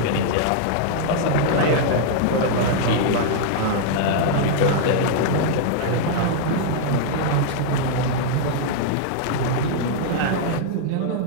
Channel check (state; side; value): different; both; correlation -0.01